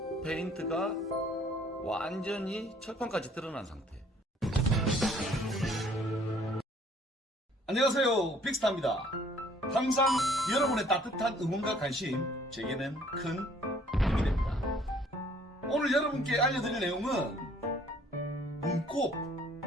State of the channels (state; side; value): normal; both; correlation 0.59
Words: 페인트가 완전히 철판까지 드러난 상태. 안녕하세요, 빅스타입니다. 항상 여러분의 따뜻한 응원과 관심 제게는 큰 힘이 됩니다. 오늘 여러분께 알려드릴 내용은